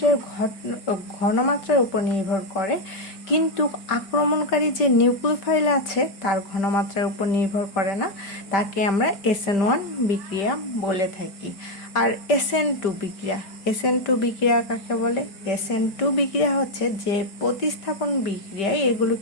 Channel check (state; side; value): late; right; 5.1 ms